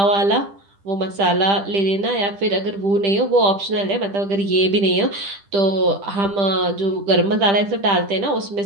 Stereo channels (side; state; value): left; late; 10 ms